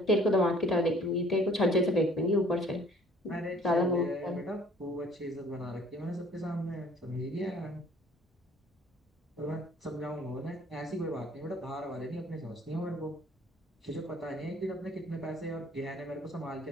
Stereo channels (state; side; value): normal; both; correlation 0.53